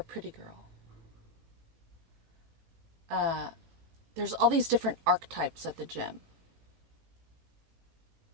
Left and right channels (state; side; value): late; left; 18 ms